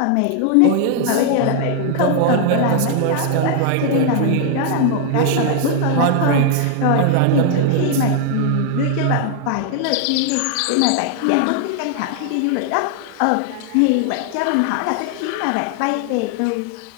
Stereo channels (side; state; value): both; different; correlation 0.00